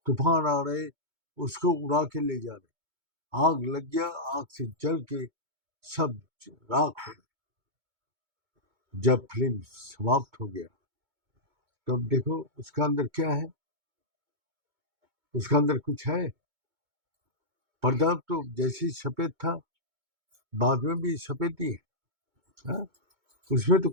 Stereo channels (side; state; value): left; late; 2.2 ms